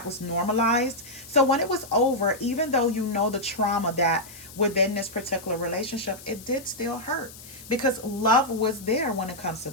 was normalized. So when it was over, even though you know the trauma that within this particular relationship, it did still hurt because love was there when it comes to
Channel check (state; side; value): noise; left; hiss, 17 dB below the sound